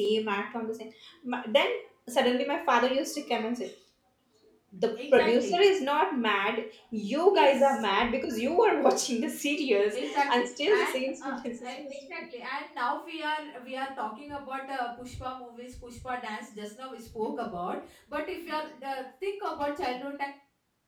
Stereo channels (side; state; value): both; identical; correlation 1.00